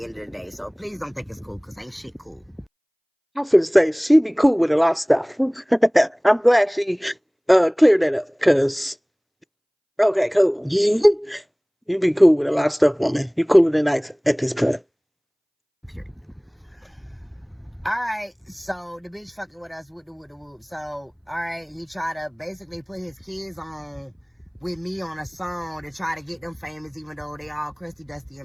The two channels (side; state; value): both; identical; correlation 1.00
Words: end of the day. So please don't think it's cool because ain't shit cool. I'm finna say she be cool with a lot of stuff. I'm glad she cleared that up, cause okay, cool. You be cool with a lot of stuff, woman. You cooler than ice at this point. Period. Alright, so the bitch fucking with us with the whoop. So, alright, he tried to basically put his kids on with me on a song to try to get them famous, even though they all crusty, dusty,